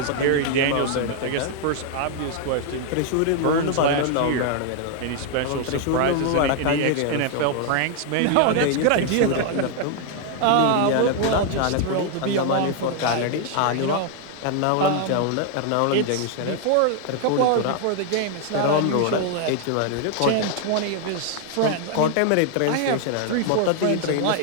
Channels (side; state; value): both; different; correlation 0.00